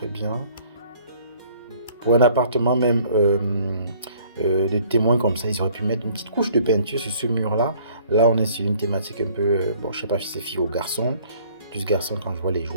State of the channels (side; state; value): both; inverted; correlation -0.57